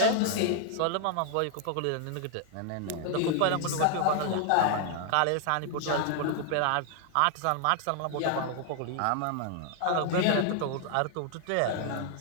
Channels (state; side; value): different; both; correlation 0.00